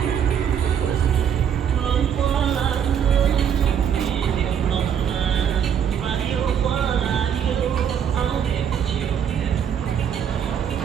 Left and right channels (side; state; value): left; quieter; 8.3 dB